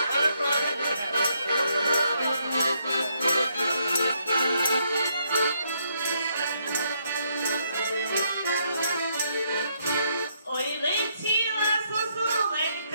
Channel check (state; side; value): inverted; both; correlation -0.74